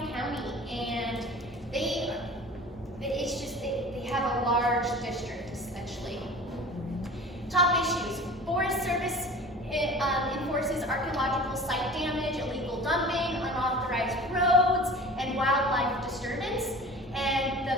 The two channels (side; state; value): both; normal; correlation 0.40